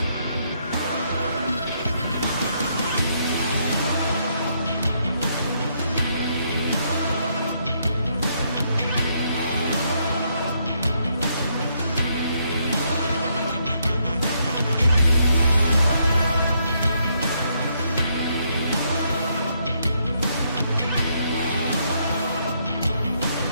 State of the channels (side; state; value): both; inverted; correlation -0.74